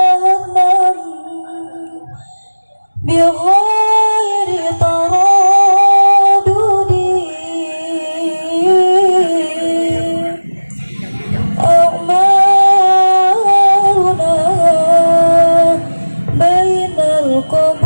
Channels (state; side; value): inverted; both; correlation -1.00